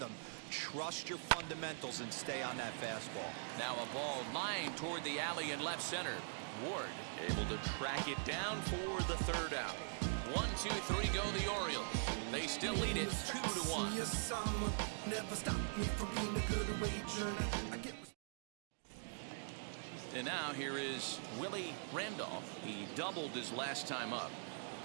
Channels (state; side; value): silent; left; digital silence